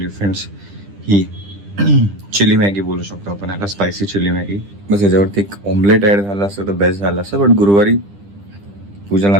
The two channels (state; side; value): late; left; 10 ms